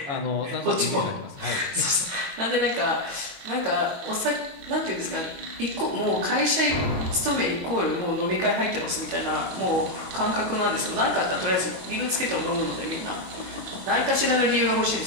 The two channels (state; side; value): late; left; 22 ms